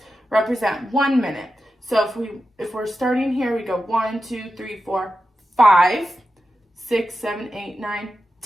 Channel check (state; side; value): normal; both; correlation 0.91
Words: represent 1 minute. So if we're starting here, we go 1, 2, 3, 4, 5, 6, 7, 8, 9,